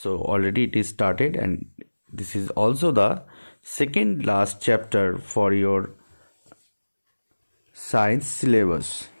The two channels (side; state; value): both; inverted; correlation -1.00